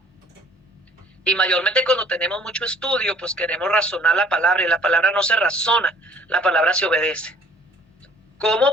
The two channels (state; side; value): normal; both; correlation 0.56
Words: Y mayormente cuando tenemos mucho estudio, pues queremos razonar la palabra, y la palabra no se razona, la palabra se obedece.